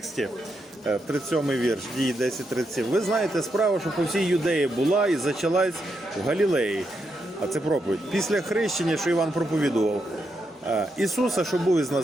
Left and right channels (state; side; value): normal; both; correlation 0.82